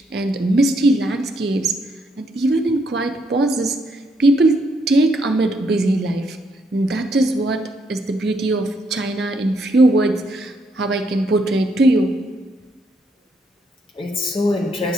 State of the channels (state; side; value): normal; both; correlation 0.74